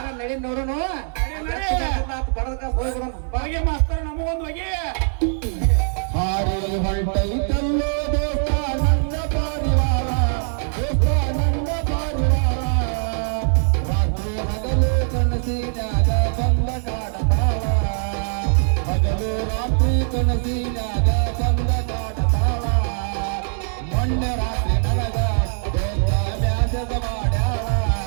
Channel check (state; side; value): silent; left; 63 dB below the other